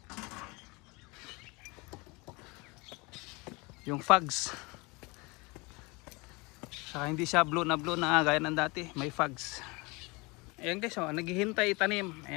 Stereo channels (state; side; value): quieter; right; 26.5 dB